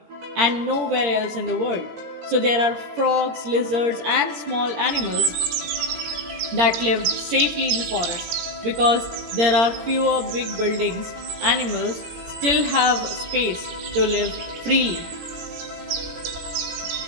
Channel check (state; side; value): late; left; 18 ms